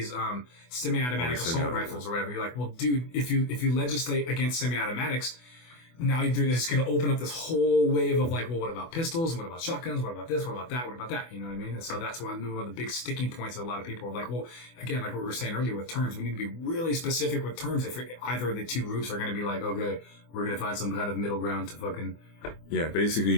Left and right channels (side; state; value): right; late; 24 ms